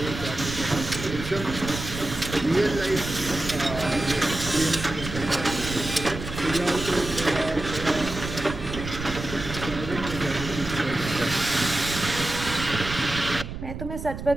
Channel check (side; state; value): right; noise; rumble, 8 dB below the sound